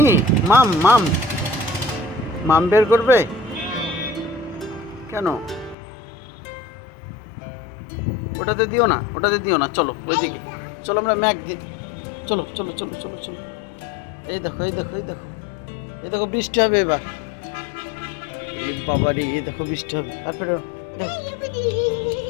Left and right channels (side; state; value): right; drops out; at 5.8 s